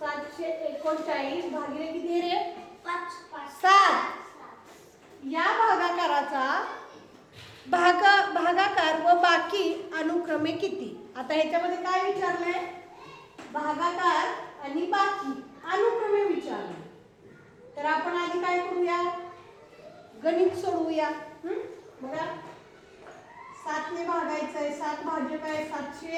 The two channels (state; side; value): identical; both; correlation 1.00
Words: भागिले किती रे? 7. या भागाकाराचा भागाकार व बाकी अनुक्रमे किती? आता ह्याच्यामध्ये काय विचारलंय? भागाकार आणि बाकी अनुक्रमे विचारले. तर आपण आधी काय करूया? गणित सोडवूया. बघा, 7 ने भागायचंय. 7 भाजक आहे.